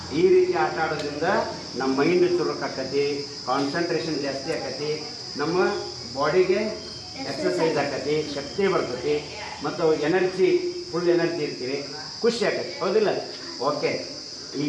ಈ ರೀತಿ ಆಟ ಆಡೋದ್ರಿಂದ ನಮ್ಮ ಮೈಂಡ್ ಚುರುಕು ಆಕತಿ, ಕಾನ್ಸಂಟ್ರೇಷನ್ ಜಾಸ್ತಿ ಆಕತಿ, ನಮ್ಮ ಬಾಡಿಗೆ ಎಕ್ಸರ್ಸೈಸ್ ಆಕತಿ, ಶಕ್ತಿ ಬರ್ತೈತಿ, ಮತ್ತು ಎನರ್ಜಿ ಫುಲ್ ಎನರ್ಜಿ ಇರ್ತೀವಿ, ಖುಷಿ ಆಕತಿ, ಹೌದಿಲ್ಲ? ಓಕೆ, ಈಗ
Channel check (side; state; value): both; identical; correlation 1.00